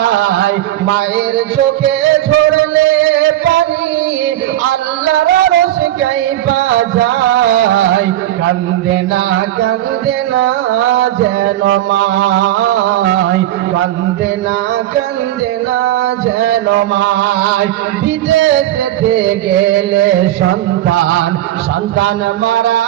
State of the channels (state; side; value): quieter; left; 13.8 dB